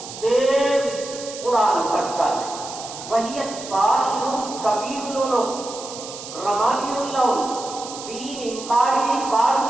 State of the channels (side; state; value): right; noise; hiss, 12 dB below the sound